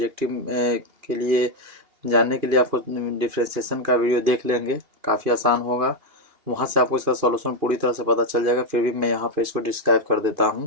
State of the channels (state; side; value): late; left; 2.8 ms